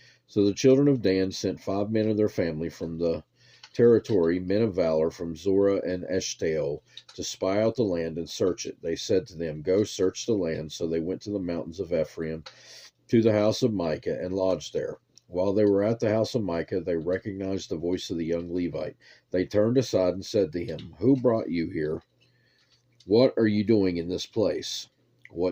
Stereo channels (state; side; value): identical; both; correlation 1.00